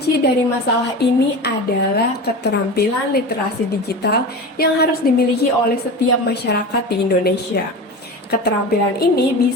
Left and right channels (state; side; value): normal; both; correlation 0.28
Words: dari masalah ini adalah keterampilan literasi digital yang harus dimiliki oleh setiap masyarakat di Indonesia. Keterampilan ini